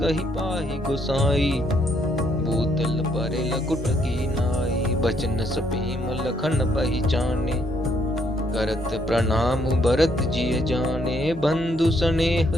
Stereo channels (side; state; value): left; noise; rumble, 19 dB below the sound